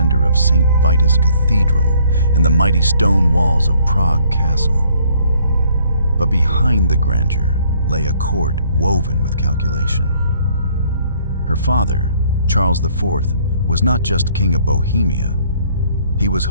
of St. Vitus Cathedral and the mighty stone walls of Prague Castle. But behind the grandeur lay a court woven with calculation. Her father, Charles IV, was not just king of Bohemia. He was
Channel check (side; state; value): both; inverted; correlation -0.63